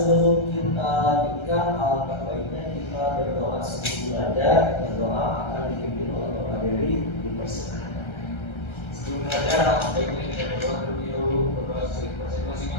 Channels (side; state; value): right; late; 1.3 ms